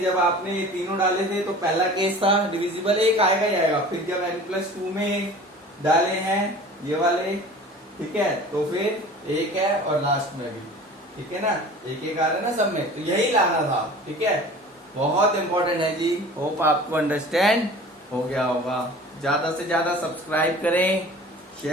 जब आपने ये तीनों डाले थे तो पहला केस था डिविजिबल एक आएगा ही आएगा। फिर जब n+2 में डाले हैं ये वाले, ठीक है, तो फिर एक है और लास्ट में भी, ठीक है ना, एक एक आ रहा है ना सब में, तो यही लाना था, ठीक है। बहुत इंपॉर्टेंट है जी। होप आपको अंडरस्टैंड हो गया होगा। ज्यादा से ज्यादा सब्सक्राइब करें,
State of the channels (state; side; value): normal; both; correlation 0.42